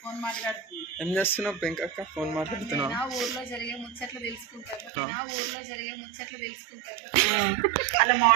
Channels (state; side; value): drops out; left; at 4.9 s